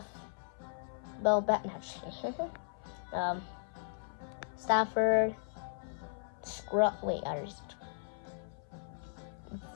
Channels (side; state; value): right; silent; 53 dB below the other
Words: Stafford, Scruff. Wait, others.